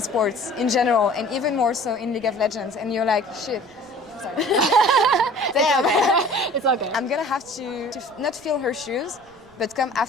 in general, and even more so in League of Legends, and you're like, shit. Sorry. Damn. It's okay. I'm gonna have to not fill her shoes, but come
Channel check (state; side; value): noise; right; rumble, 28 dB below the sound